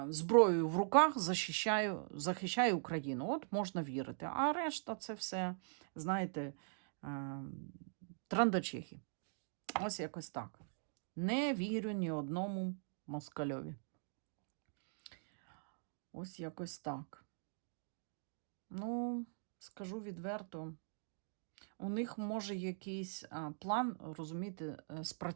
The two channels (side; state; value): left; silent; digital silence